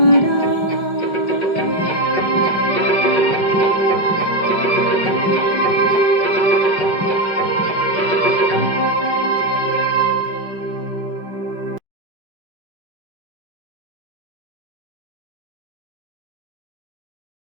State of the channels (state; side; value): late; right; 5.0 ms